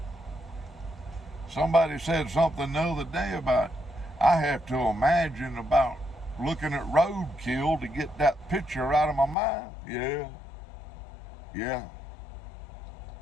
Somebody said something the other day about, I have to imagine about looking at roadkill to get that picture out of my mind. Yeah.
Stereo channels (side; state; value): right; drops out; at 9.3 s